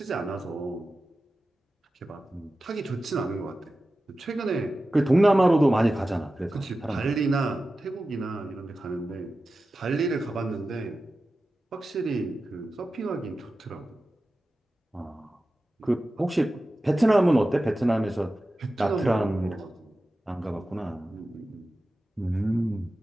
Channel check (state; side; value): normal; both; correlation 0.94